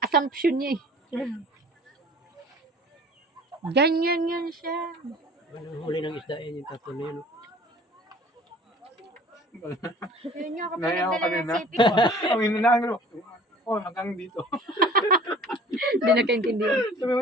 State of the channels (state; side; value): normal; both; correlation 0.48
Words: assumption niya eh. Ganyan yan siya. Anong huli ng isda yan yung tatlo na yun. Yun yung ako Naya ako pinagdala ng kanina. sipi. Ang inanaan ko. Oh, hanggang dito. Hindi nakaintindihan. Sabi mo